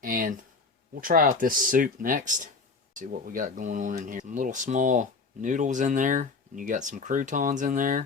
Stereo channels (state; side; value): quieter; right; 4.3 dB